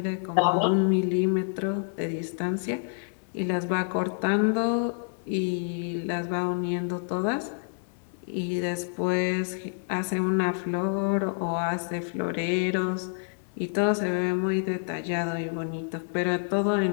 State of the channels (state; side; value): silent; right; 59 dB below the other